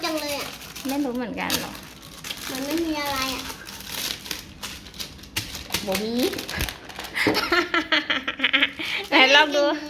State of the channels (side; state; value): both; identical; correlation 1.00